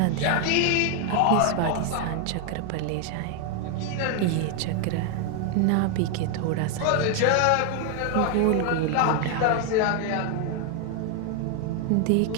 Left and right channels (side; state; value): both; different; correlation 0.01